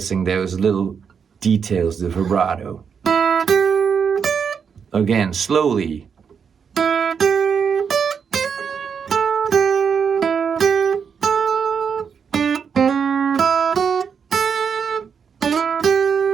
those little details, the vibrato. Again, slowly.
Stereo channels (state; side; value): quieter; left; 6.7 dB